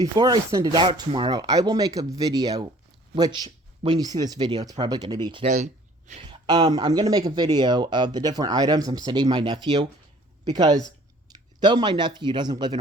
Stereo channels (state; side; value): normal; both; correlation 0.54